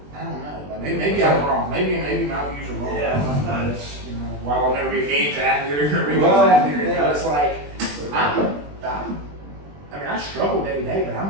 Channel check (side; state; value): left; late; 20 ms